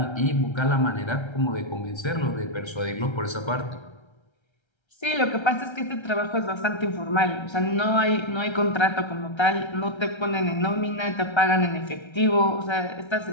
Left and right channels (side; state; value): right; late; 1.3 ms